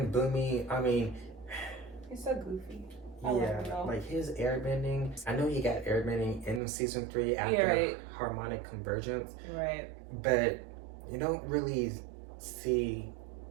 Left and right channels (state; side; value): drops out; left; at 6.6 s